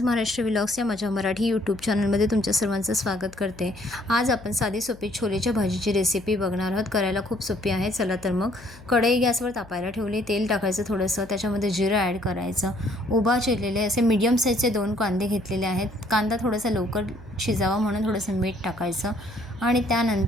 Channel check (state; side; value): noise; left; hum, 22 dB below the sound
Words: महाराष्ट्र व्लॉग्स या माझ्या मराठी यूट्यूब चॅनलमध्ये तुमच्या सर्वांचं स्वागत करते। आज आपण साधी सोपी छोलेच्या भाजीची रेसिपी बघणार आहोत। करायला खूप सोपी आहे। चला तर मग कढई गॅसवर तापायला ठेवली, तेल टाकायचं थोडंसं, त्याच्यामध्ये जिरं ॲड करायचं, उभा चिरलेले असे मीडियम साईजचे 2 कांदे घेतलेले आहेत। कांदा थोडासा लवकर शिजावा म्हणून थोडंसं मीठ टाकायचं आणि